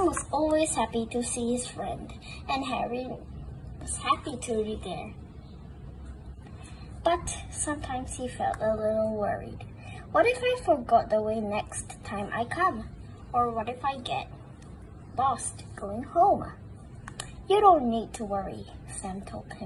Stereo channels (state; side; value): identical; both; correlation 1.00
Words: was always happy to see his friend, and Harry was happy to be there. But sometimes he felt a little worried. What if I forgot the way next time I come? Or what if I get lost going home? You don't need to worry, Sam told